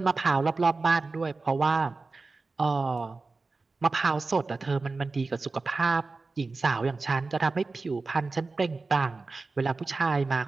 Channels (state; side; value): quieter; left; 3.8 dB